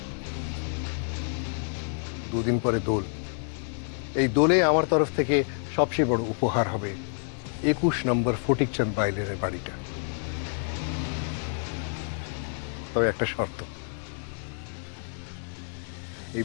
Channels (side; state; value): right; silent; 59 dB below the other